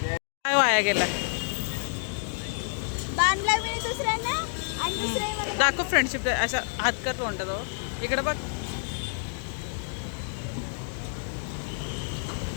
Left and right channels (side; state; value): right; silent; 59 dB below the other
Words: काय वाया गेला? दाखव फ्रेंडशिप डे. अशा हात कर तोंडाजवळ. इकडे बघ,